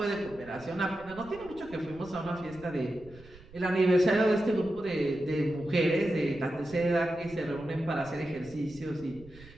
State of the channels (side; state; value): right; noise; rumble, 21 dB below the sound